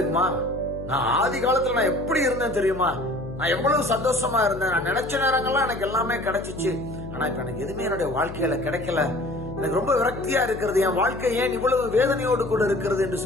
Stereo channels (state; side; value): noise; left; hum, 12 dB below the sound